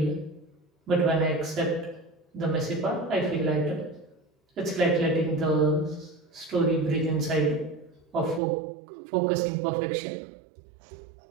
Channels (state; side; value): drops out; left; at 8.4 s